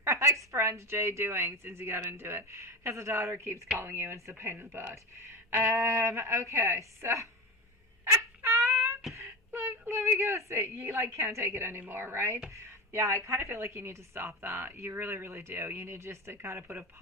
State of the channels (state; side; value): normal; both; correlation 0.23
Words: ex-friend Jay doing since you got into it? Because the daughter keeps calling you and it's a pain in the butt. Okay, so let me go see. You can't take it anymore, right? Yeah, I kind of feel like you need to stop that. You really, really do. You need just to kind of put a